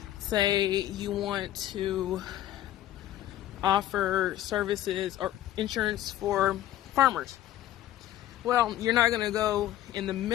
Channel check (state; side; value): quieter; right; 13.2 dB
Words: say you want to offer services or insurance for farmers. Well, you're not going to go in the